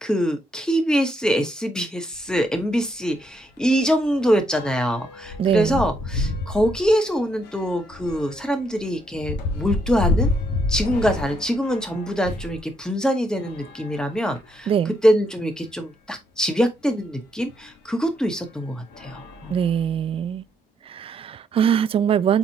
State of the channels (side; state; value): both; normal; correlation 0.76